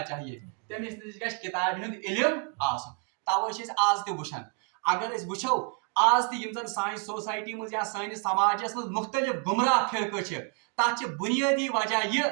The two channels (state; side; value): quieter; left; 36.1 dB